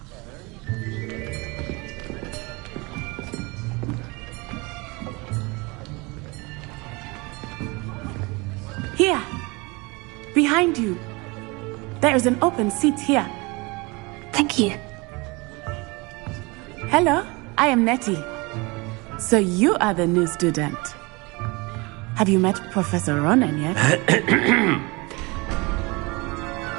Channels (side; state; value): left; quieter; 26.2 dB